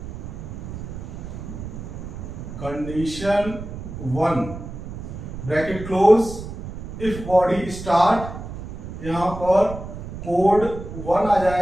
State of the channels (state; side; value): noise; right; rumble, 9 dB below the sound